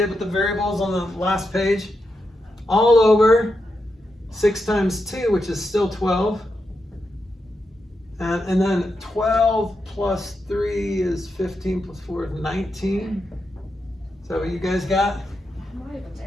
with the variables on the last page. All over 6 times 2, which is still 12. And then 12 plus 3 is 15 plus 4 is 19. Is that what you guys got? I'm not even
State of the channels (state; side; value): normal; both; correlation 0.86